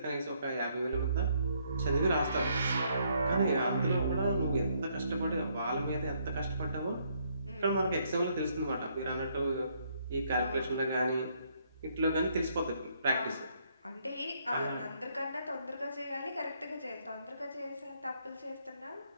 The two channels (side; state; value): both; inverted; correlation -0.71